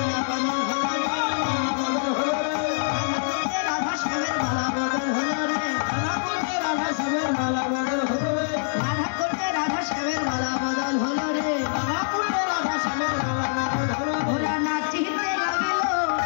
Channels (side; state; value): right; silent; 62 dB below the other